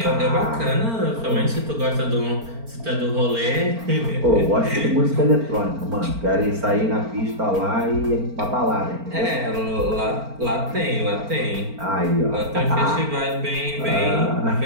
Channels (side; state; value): left; late; 4.4 ms